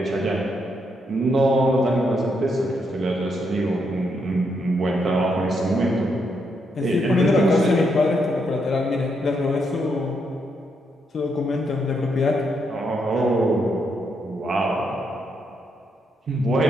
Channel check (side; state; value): both; normal; correlation 0.78